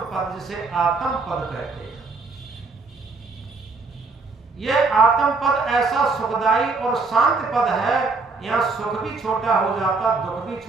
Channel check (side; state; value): left; quieter; 4.1 dB